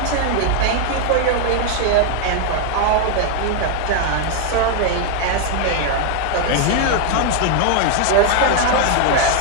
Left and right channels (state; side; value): different; both; correlation 0.00